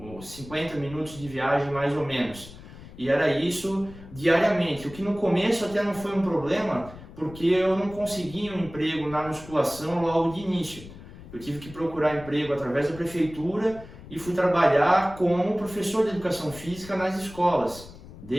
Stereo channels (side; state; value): left; noise; rumble, 17 dB below the sound